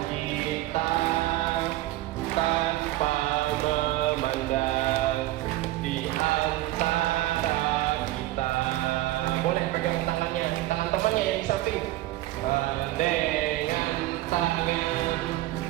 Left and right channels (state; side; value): quieter; left; 16.4 dB